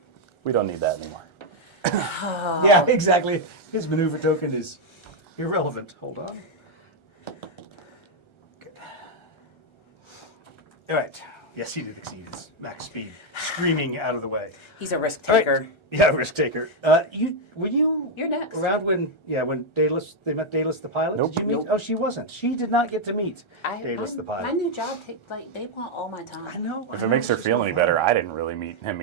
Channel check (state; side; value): late; right; 1.3 ms